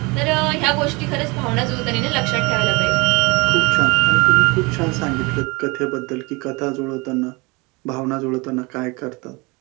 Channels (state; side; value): quieter; left; 26.4 dB